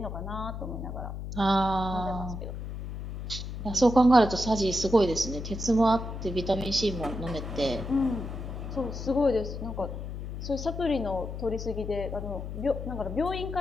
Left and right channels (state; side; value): noise; left; hum, 7 dB below the sound